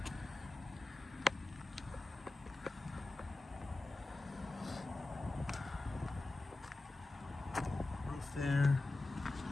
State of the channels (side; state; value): right; quieter; 3.0 dB